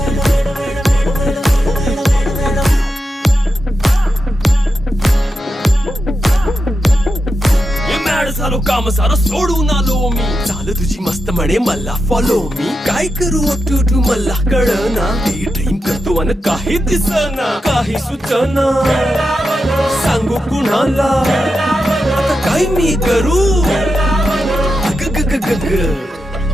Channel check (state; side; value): normal; both; correlation 0.88